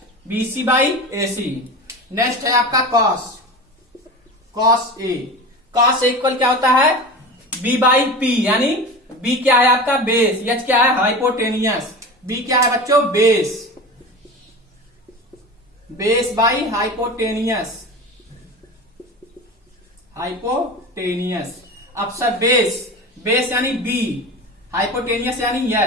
BC by AC. Next है आपका cos, cos A. Cos A equal क्या होता है? बी बाई पी, यानी बी क्या है आपका? बेस, एच क्या है? हाइपोटेनियस, बी क्या है बच्चों? Base, base by hypotenuse, hypotenuse. अब सर बेस, बेस यानी बी, हाइपोटेनियस यानी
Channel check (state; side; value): normal; both; correlation 0.30